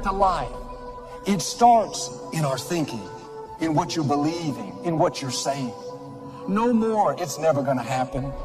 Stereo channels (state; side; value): identical; both; correlation 1.00